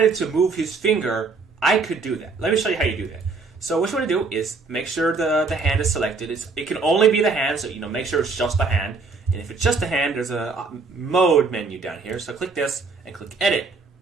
to move his finger, I could do that. Let me show you how you do that. So what you want to do is make sure the hand is selected. It can only be the hand, so make sure it's just the hand. And if it's just the hand, there's a mode menu down here. So click this and click edit.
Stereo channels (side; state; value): left; quieter; 4.2 dB